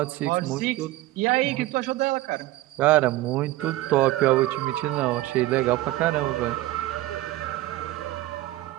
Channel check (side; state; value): left; quieter; 17.0 dB